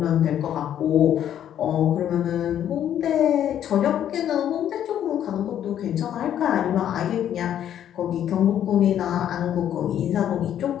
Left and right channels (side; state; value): right; quieter; 10.4 dB